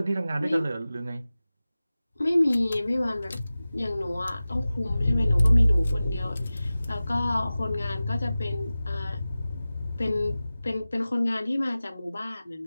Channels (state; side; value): inverted; both; correlation -0.96